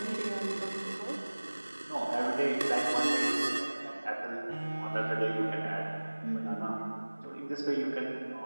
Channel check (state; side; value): inverted; both; correlation -1.00